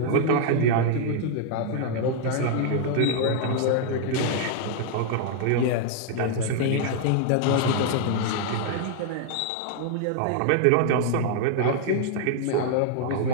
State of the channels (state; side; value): different; both; correlation 0.00